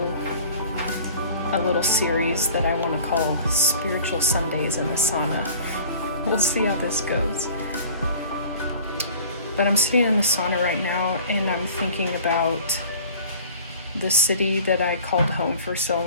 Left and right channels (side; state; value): both; inverted; correlation -0.47